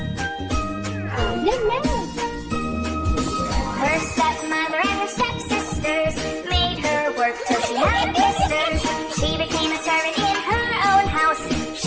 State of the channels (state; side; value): identical; both; correlation 1.00